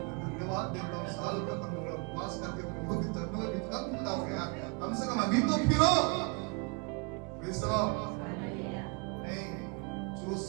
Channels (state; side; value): quieter; left; 32.6 dB